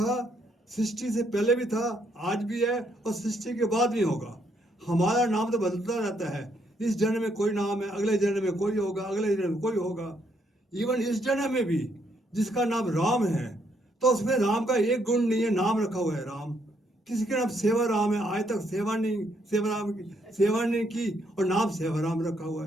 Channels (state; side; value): normal; both; correlation 0.73